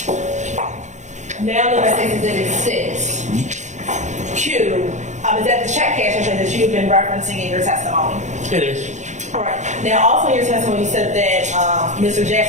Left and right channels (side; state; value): left; late; 0.34 ms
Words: Now look at Stacy Exhibit 6Q. Is that the check cashing place that you've been referencing in your testimony? It is. All right. Now, also in your testimony, you said that Mr.